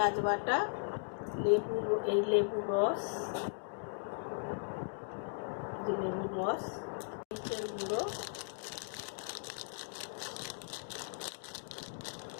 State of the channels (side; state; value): right; silent; digital silence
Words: বাটা, লেবুর রস, মরিচের গুঁড়ো,